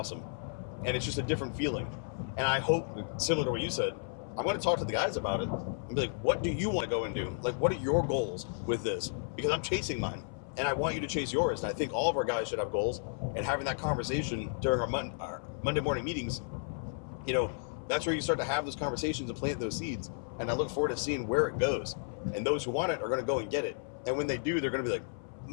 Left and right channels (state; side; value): silent; right; 56 dB below the other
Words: And it's just a different feeling. And I hope, similar to what you said, I'm going to talk to the guys about it and be like, what do you want to go and do? What are your goals with this? Because I'm chasing mine. and I want you to chase yours. And I think all of our guys should have goals, and having that conversation during our Monday morning meetings, that's where you start to have those conversations and plant those seeds. And I look forward to seeing where it goes. And those who want it are going to go and get it. And when they do, they're going to be like